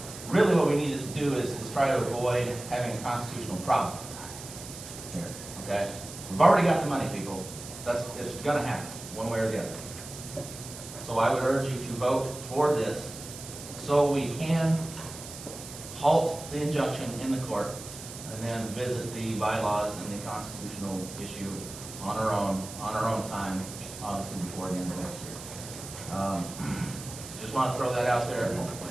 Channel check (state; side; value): noise; right; hiss, 12 dB below the sound